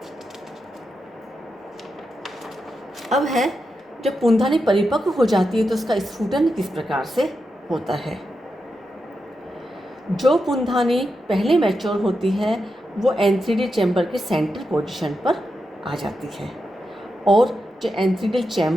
अब है जब पुंधानी परिपक्व हो जाती है तो उसका स्फुटन किस प्रकार से होता है। जो पुंधानी पहले मैच्योर होती है वो एंथ्रीडियल चैम्बर के सेंटर पोजीशन पर आ जाती है और जो एंथ्रीडियल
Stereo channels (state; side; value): normal; both; correlation 0.87